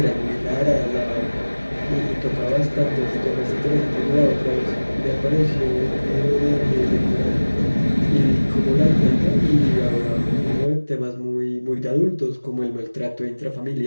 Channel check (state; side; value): inverted; both; correlation -1.00